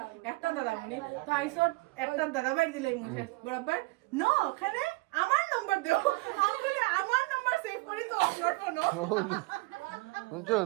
একটা দাদামণি তো আইসো একটা দাদাভাই দিলাই মুছে বরাবর নো ওখানে আমার নাম্বার দাও আমি বলি আমার নাম্বার সেভ করি তো আপলোড করো বুঝছো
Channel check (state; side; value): quieter; left; 23.4 dB